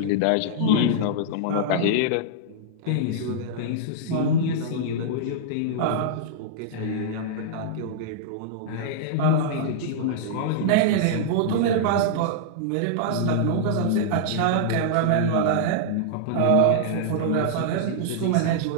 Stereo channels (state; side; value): different; both; correlation -0.02